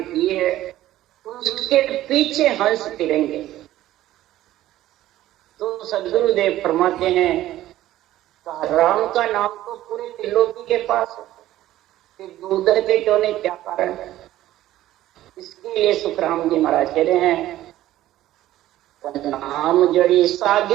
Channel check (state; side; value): quieter; left; 14.3 dB